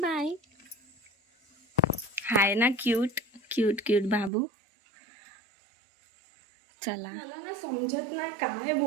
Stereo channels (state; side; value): drops out; left; at 4.3 s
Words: हाय ना क्यूट क्यूट क्यूट बाबू. चला. मला ना समजत नाही काय